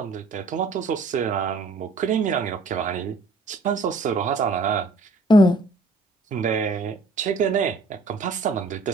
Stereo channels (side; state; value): left; quieter; 3.1 dB